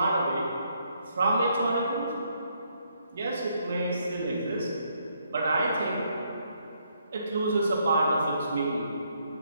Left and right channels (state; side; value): inverted; both; correlation -0.73